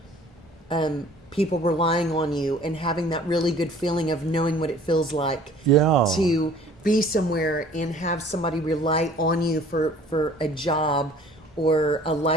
people relying on you and having that really good feeling of knowing what it feels like Yeah. to be somewhere and have somebody rely on you for a job or a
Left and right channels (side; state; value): both; normal; correlation 0.52